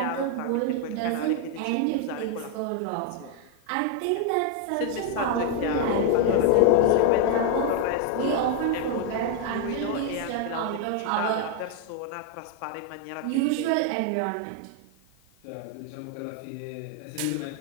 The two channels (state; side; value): different; both; correlation 0.00